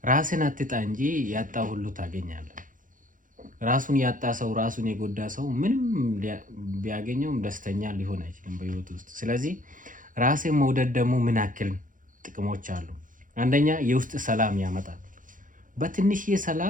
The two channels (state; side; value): late; left; 0.39 ms